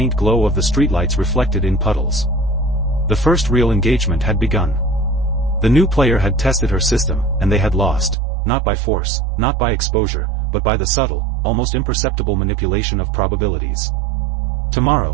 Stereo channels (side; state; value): left; drops out; at 8.2 s